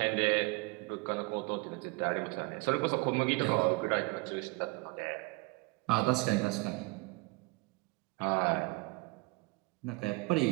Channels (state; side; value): quieter; left; 26.3 dB